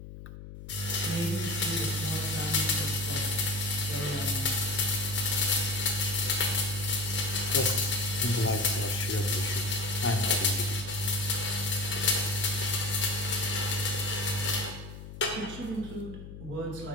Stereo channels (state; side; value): noise; left; hum, 13 dB below the sound